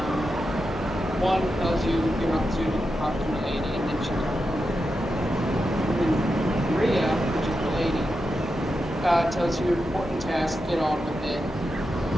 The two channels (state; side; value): normal; both; correlation 0.88